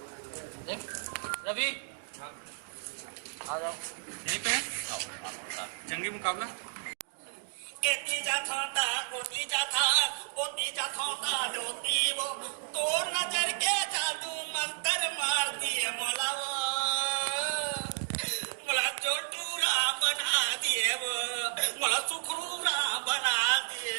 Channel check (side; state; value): left; silent; digital silence